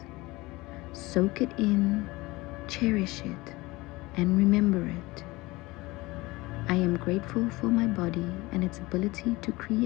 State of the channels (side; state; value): right; quieter; 21.4 dB